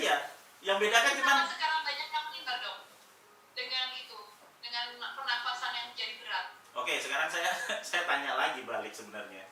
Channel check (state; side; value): identical; both; correlation 1.00